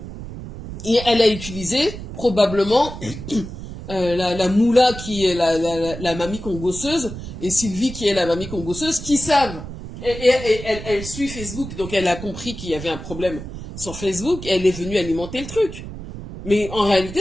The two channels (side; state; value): right; noise; rumble, 10 dB below the sound